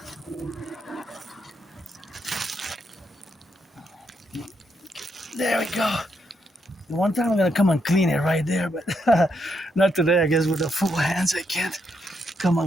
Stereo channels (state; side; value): normal; both; correlation 0.79